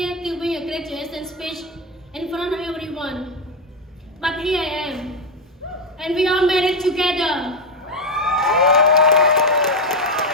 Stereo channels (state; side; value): normal; both; correlation 0.08